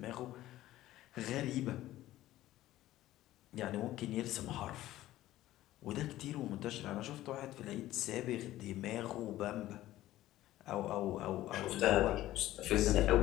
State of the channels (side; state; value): right; quieter; 15.0 dB